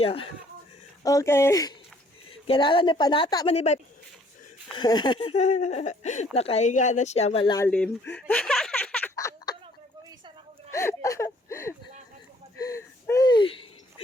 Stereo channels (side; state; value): both; normal; correlation 0.61